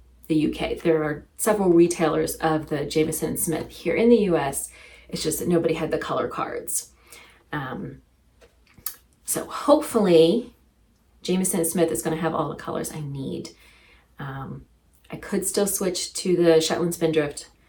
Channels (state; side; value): identical; both; correlation 1.00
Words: the UK. There are several retailers of the Jamieson Smith here in the US. It's just that nobody had the color cards. So hopefully Jamieson Smith is going to have all the colors I need. I could still switch to the Shetland Spindrift,